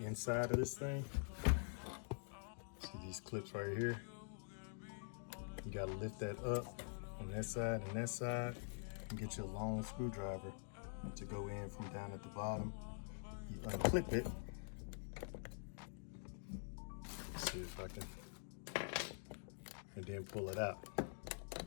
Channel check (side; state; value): right; silent; digital silence